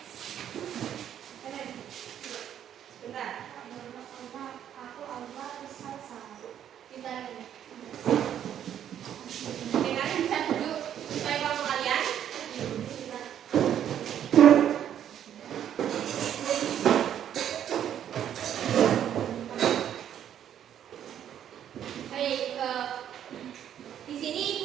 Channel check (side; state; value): left; quieter; 10.0 dB